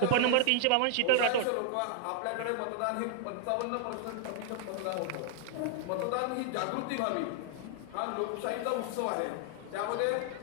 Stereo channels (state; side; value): different; both; correlation -0.01